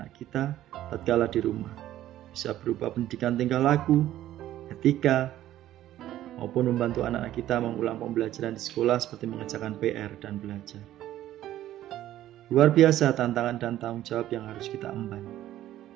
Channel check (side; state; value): left; quieter; 13.3 dB